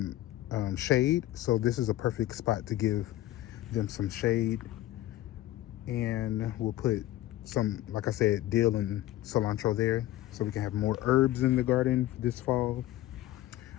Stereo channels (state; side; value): quieter; right; 14.9 dB